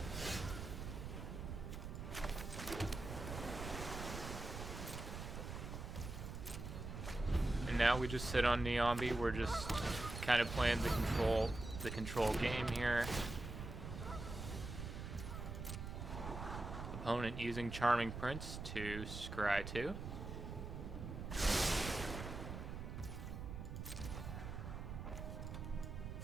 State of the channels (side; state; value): right; noise; rumble, 7 dB below the sound